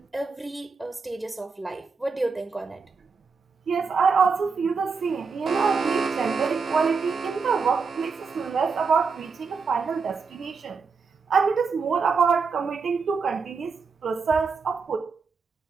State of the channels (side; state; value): left; quieter; 5.0 dB